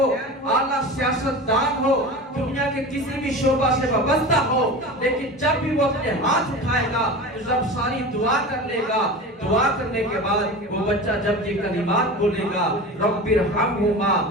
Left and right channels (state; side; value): normal; both; correlation 0.31